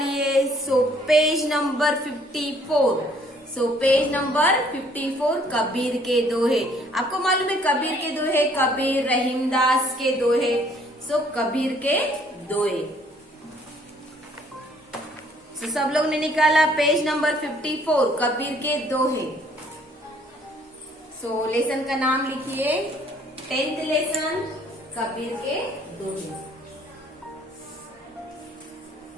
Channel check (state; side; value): normal; both; correlation 0.61